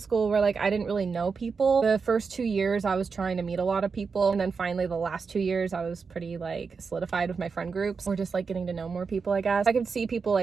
where like I didn't really know people. The first 2 years I was trying to meet a lot of people, and then finally the last 2 years I was pretty like solidified with my friend groups, or just like getting to know more people. I guess I could see people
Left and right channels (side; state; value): left; quieter; 5.2 dB